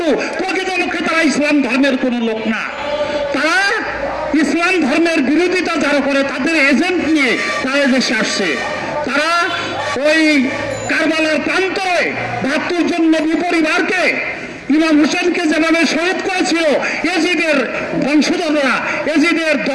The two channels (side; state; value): both; identical; correlation 1.00